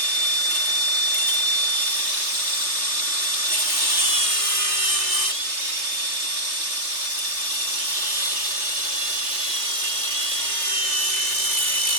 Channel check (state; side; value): late; left; 3.3 ms